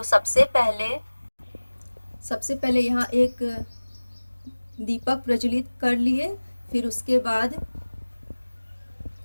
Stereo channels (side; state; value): both; inverted; correlation -1.00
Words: सबसे पहले यहाँ एक दीपक प्रज्वलित कर लिए। फिर उसके बाद